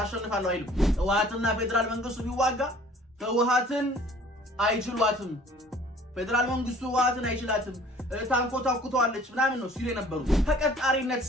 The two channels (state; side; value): normal; both; correlation 0.53